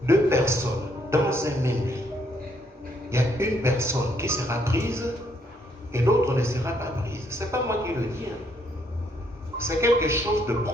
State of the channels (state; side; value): normal; both; correlation 0.71